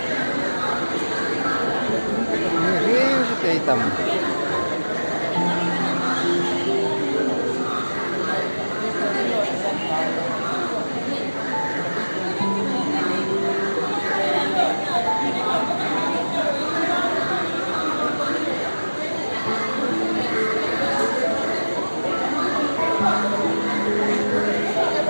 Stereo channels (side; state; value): both; inverted; correlation -1.00